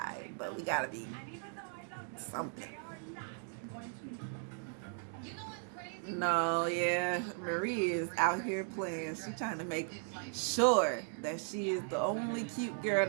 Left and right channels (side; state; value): left; silent; 53 dB below the other